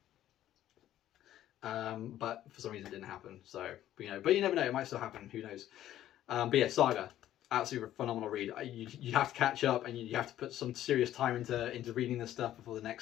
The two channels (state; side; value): quieter; right; 12.6 dB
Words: But for some reason it didn't happen. So, but you never know, it might still happen, who knows. But yeah, Saga, absolutely phenomenal read. You have to catch up, and you have to put some serious time into reading this stuff before the